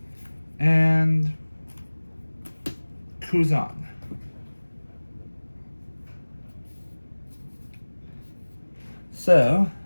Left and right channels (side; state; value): both; inverted; correlation -1.00